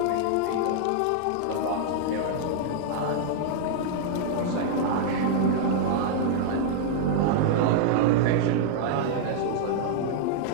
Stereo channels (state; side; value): different; both; correlation -0.01